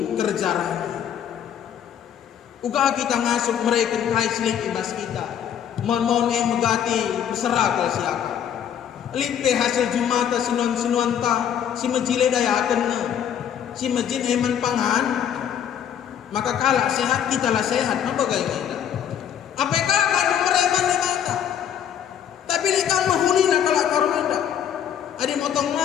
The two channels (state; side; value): quieter; right; 9.3 dB